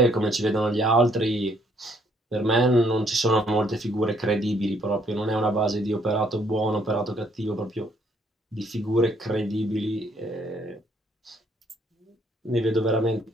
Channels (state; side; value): normal; both; correlation 0.67